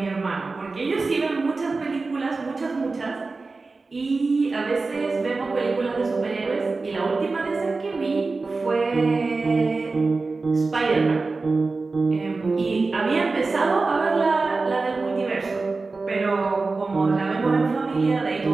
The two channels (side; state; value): left; quieter; 3.8 dB